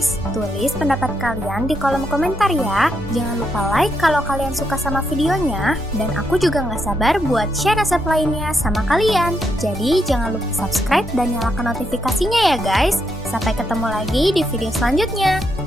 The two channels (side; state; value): both; normal; correlation 0.79